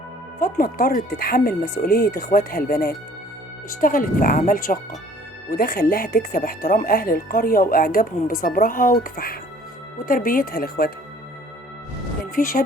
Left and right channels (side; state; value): both; normal; correlation 0.54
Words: فاطمة اضطرت تتحمل مسؤولية اخواتها البنات، اشتغلت في أعمال شاقة، وده خلاها تكسب احترام أهل القرية وإعجابهم بصبرها وكفاحها وتربيتها لاخواتها. كان في